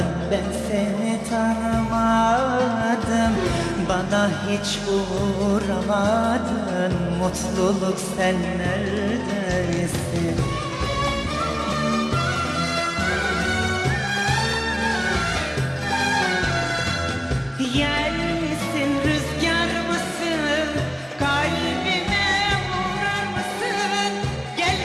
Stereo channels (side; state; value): both; identical; correlation 1.00